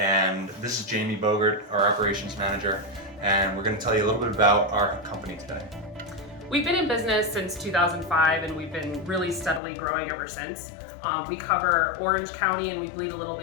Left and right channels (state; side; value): drops out; right; at 9.6 s